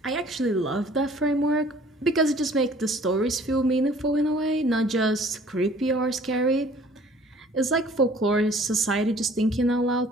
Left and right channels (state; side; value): normal; both; correlation 0.53